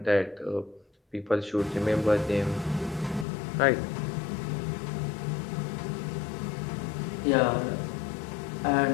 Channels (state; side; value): drops out; right; at 3.2 s